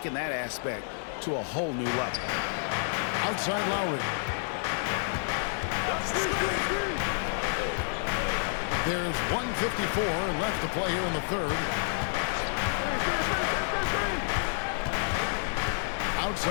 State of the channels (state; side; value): silent; right; digital silence